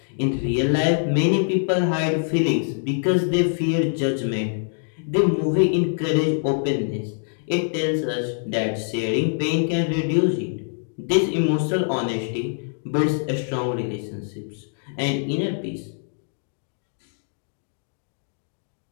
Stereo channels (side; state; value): right; silent; digital silence